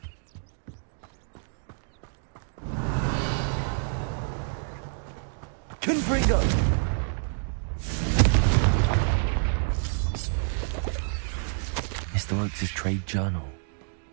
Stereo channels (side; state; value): left; silent; digital silence